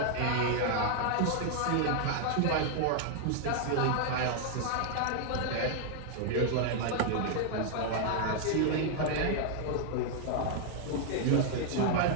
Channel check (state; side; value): different; both; correlation 0.00